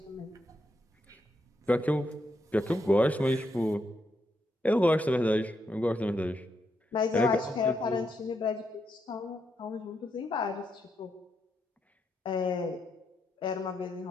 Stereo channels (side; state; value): both; normal; correlation 0.81